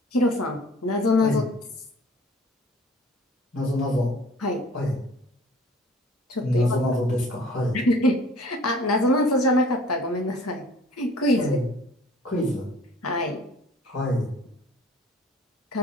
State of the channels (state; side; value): normal; both; correlation 0.50